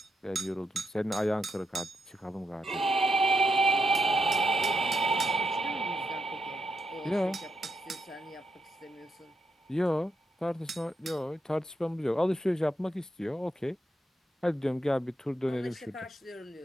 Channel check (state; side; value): normal; both; correlation 0.82